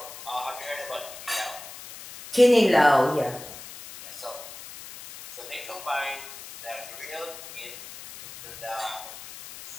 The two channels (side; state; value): left; noise; hiss, 14 dB below the sound